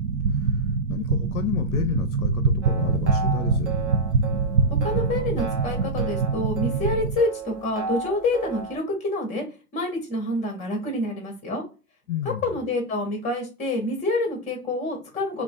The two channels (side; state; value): both; normal; correlation -0.03